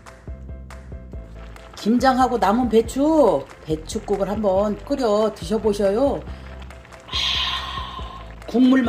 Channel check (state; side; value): identical; both; correlation 1.00